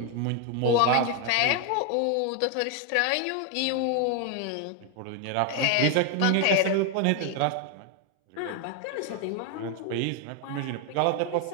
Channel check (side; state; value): both; different; correlation 0.01